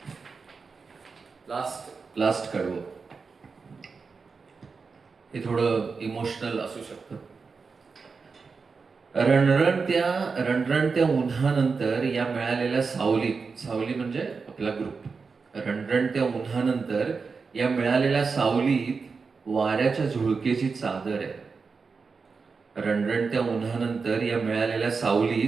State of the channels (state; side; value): quieter; left; 4.9 dB